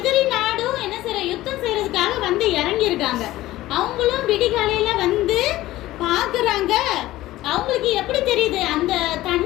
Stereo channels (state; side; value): quieter; right; 16.3 dB